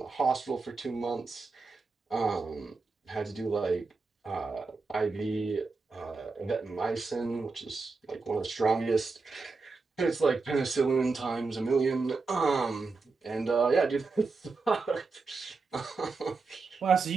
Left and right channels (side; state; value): left; quieter; 4.2 dB